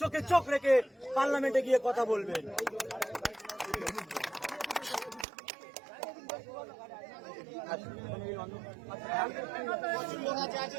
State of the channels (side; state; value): left; drops out; at 5.2 s